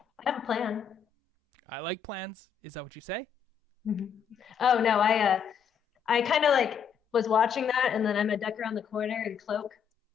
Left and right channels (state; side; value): quieter; right; 7.4 dB